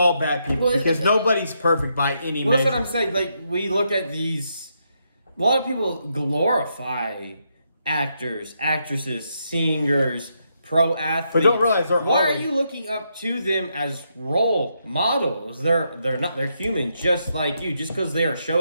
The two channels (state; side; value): inverted; both; correlation -0.80